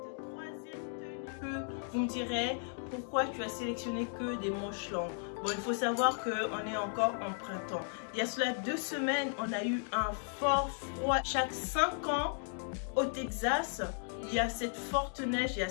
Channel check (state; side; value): silent; right; 54 dB below the other